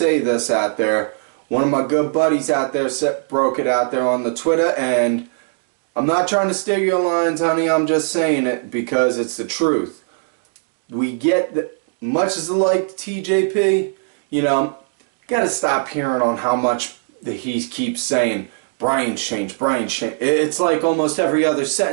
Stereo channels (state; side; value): silent; left; digital silence